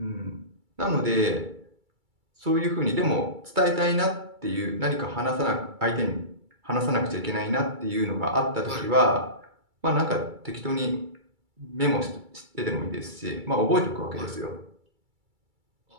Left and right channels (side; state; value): left; late; 2.3 ms